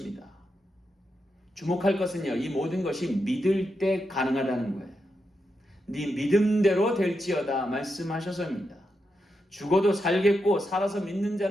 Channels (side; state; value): both; normal; correlation 0.85